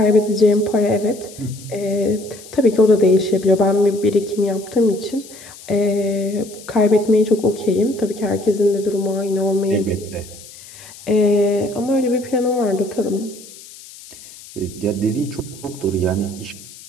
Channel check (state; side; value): noise; left; hiss, 19 dB below the sound